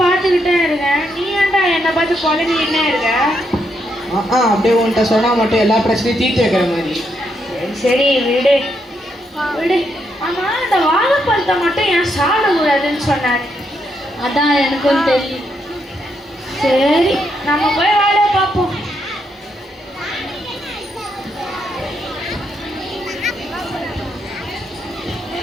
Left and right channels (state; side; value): normal; both; correlation 0.78